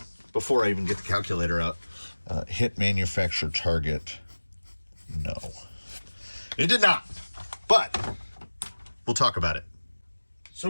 before I even get the calculator out, hit manufacturer target. No, it did not. But we'll talk about it. So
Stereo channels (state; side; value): inverted; both; correlation -1.00